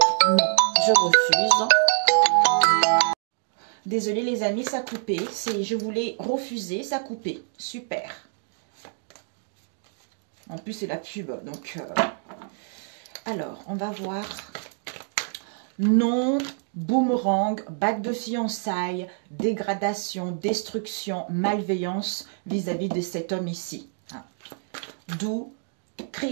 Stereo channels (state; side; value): silent; left; 60 dB below the other